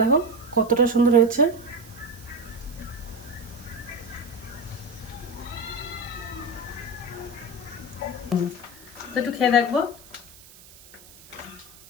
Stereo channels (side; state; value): right; noise; hiss, 21 dB below the sound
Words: কতটা সুন্দর হয়েছে। তো একটু খেয়ে দেখবো।